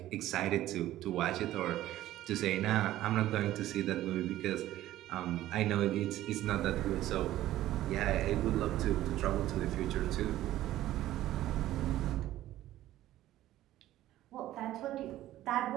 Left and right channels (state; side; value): quieter; left; 14.2 dB